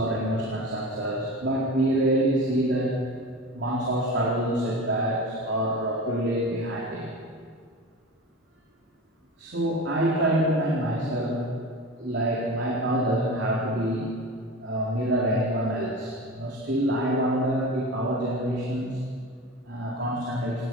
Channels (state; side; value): normal; both; correlation 0.32